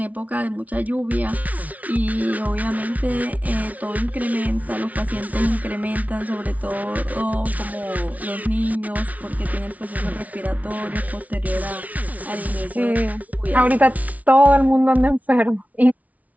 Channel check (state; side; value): late; left; 0.071 ms